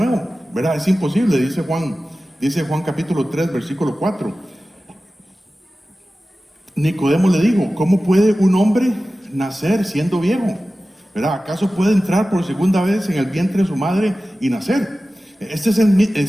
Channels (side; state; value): both; normal; correlation 0.95